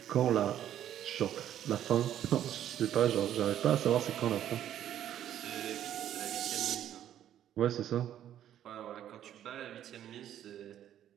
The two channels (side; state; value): left; quieter; 11.0 dB